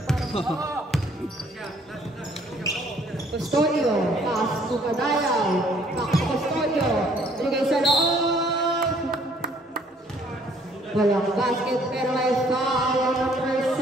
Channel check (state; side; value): normal; both; correlation 0.61